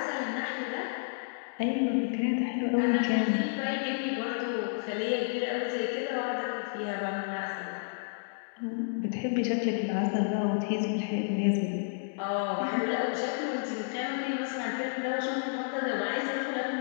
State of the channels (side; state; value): right; silent; digital silence